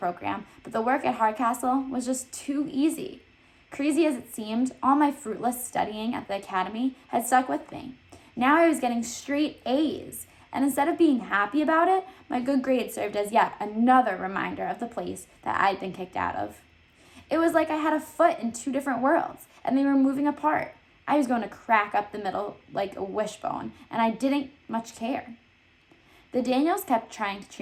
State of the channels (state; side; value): identical; both; correlation 1.00